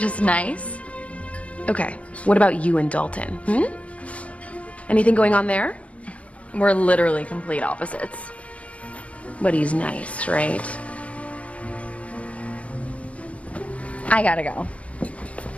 nice? Okay. What about you and Dalton? Anything going on there? We're literally complete opposites. But he's nice, right? I gotta go.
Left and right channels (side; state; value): right; late; 0.064 ms